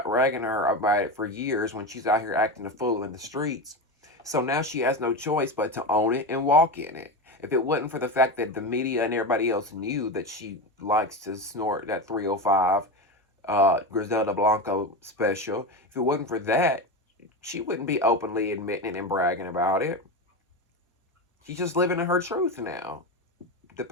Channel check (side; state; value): both; normal; correlation 0.19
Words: about it for years when she's out here acting a fool in the streets. So now she has no choice but to own it and walk in it. If it wasn't for the fact that the media and everybody else knew that she likes to snort that 305 Griselda Blanco special, if it wasn't for that, she wouldn't be openly admitting it and bragging about it. She's just living in her truth now. The